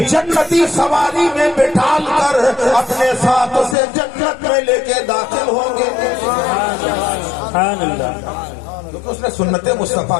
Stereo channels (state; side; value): drops out; right; at 3.8 s